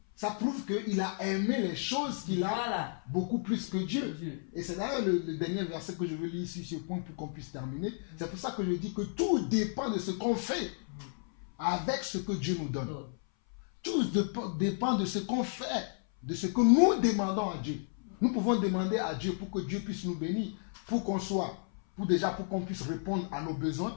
Ça prouve qu'il a aimé les choses qu'il a beaucoup plus que Dieu. Et c'est d'ailleurs le dernier verset que je veux lire ici sur ce point pour qu'on puisse terminer. C'est pour ça que je dis que tout dépend de ce qu'on fait avec ce que Dieu nous donne. Tout dépend de ce qu'on fait, de ce que nous demandons à Dieu. Nous pouvons demander à Dieu pour que Dieu puisse nous bénir, pour qu'on pour qu'on puisse répondre à nos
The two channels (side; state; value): right; silent; 56 dB below the other